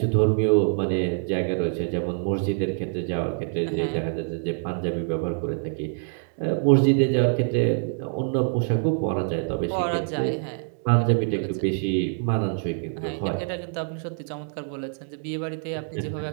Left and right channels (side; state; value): left; silent; 57 dB below the other